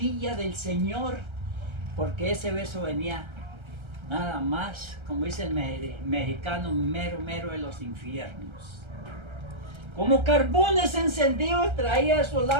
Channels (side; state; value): left; late; 1.3 ms